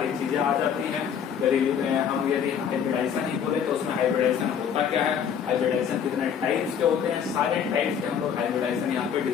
चीजें आ जाती हैं। यदि हाइब्रिडाइजेशन ही बोले तो उसमें हाइब्रिडाइजेशन होता क्या है, हाइब्रिडाइजेशन कितने टाइप्स के होते हैं, सारे टाइप्स के हम लोग हाइब्रिडाइजेशन यहाँ पे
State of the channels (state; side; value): quieter; right; 7.9 dB